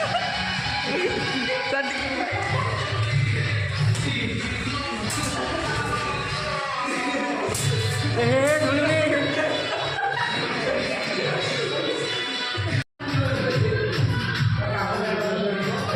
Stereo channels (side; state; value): both; identical; correlation 1.00